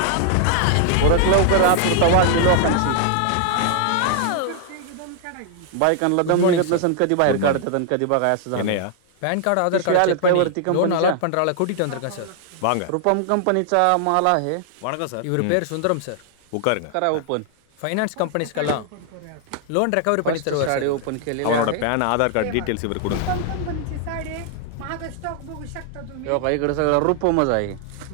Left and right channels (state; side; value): different; both; correlation 0.00